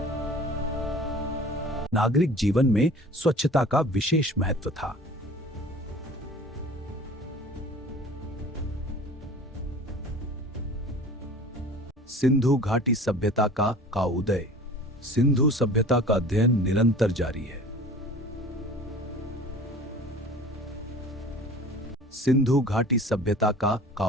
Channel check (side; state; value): both; normal; correlation 0.43